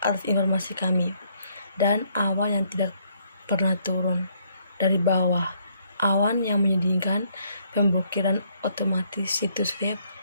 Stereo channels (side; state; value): both; inverted; correlation -0.69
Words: atas informasi kami, dan awan yang tidak pernah turun dari bawah, awan yang menyedihkan, pemblokiran otomatis situs web